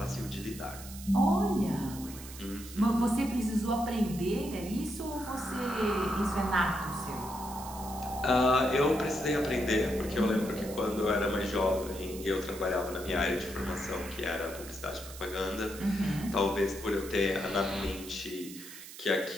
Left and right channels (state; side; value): noise; right; hiss, 14 dB below the sound